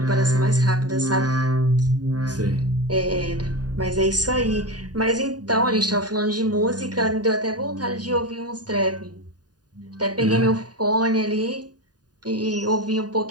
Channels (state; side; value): late; left; 0.69 ms